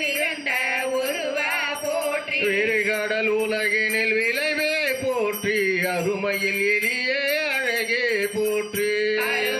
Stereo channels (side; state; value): both; identical; correlation 1.00